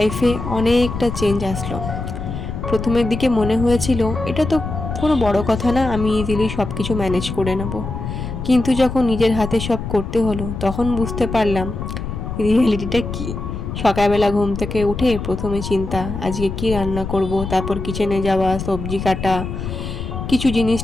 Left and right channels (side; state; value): left; noise; rumble, 6 dB below the sound